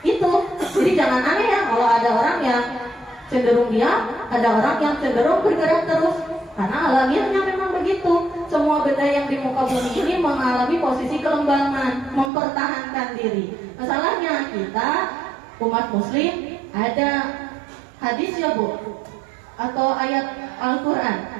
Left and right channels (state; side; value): drops out; left; at 12.3 s